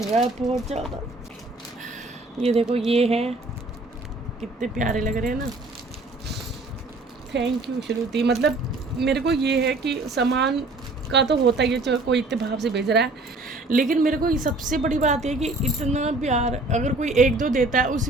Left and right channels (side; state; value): left; quieter; 3.0 dB